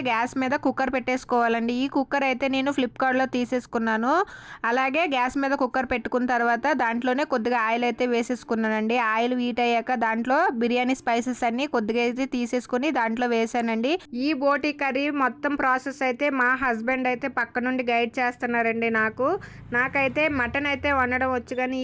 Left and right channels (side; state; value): both; identical; correlation 1.00